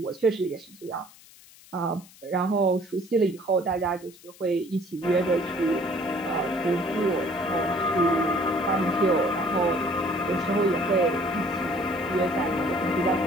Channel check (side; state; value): left; noise; hiss, 23 dB below the sound